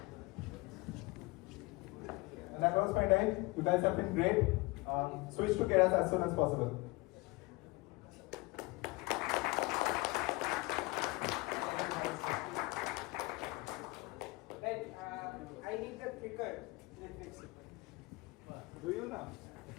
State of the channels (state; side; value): quieter; right; 23.9 dB